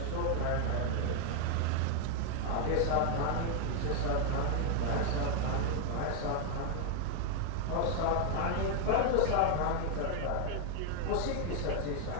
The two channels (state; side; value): different; both; correlation 0.00